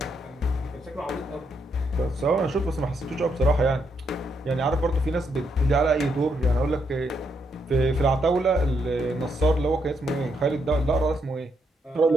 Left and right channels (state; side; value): normal; both; correlation 0.77